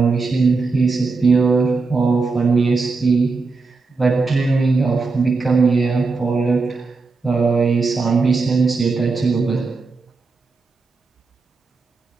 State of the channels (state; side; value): quieter; left; 4.2 dB